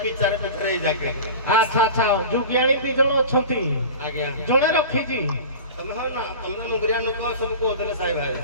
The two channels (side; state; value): both; inverted; correlation -0.34